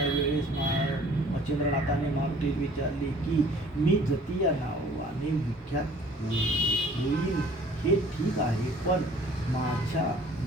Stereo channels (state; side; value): normal; both; correlation 0.53